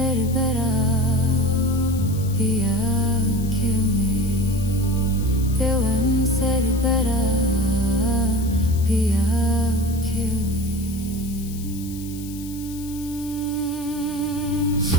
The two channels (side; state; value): left; noise; hiss, 16 dB below the sound